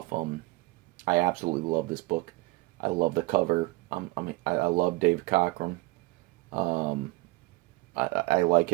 I absolutely love this book. I love the cover. I love Dave Cockrum. I like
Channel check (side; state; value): left; quieter; 21.3 dB